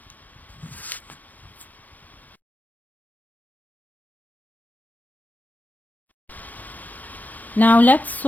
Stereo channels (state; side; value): late; right; 0.081 ms